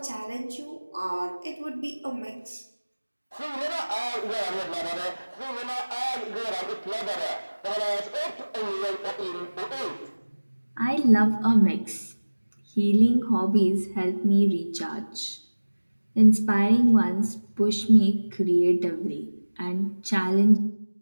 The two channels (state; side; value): inverted; both; correlation -1.00